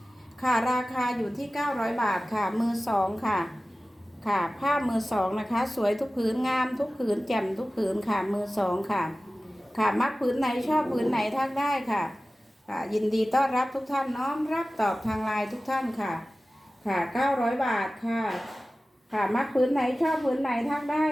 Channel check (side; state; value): both; normal; correlation 0.96